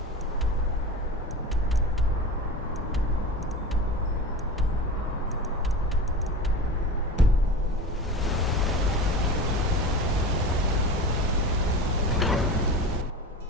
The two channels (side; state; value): both; normal; correlation 0.31